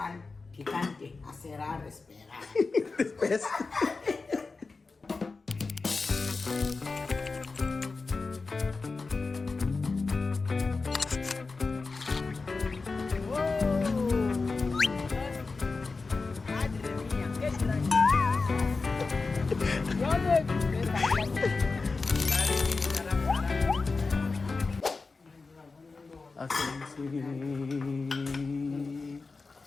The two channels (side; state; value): right; quieter; 4.1 dB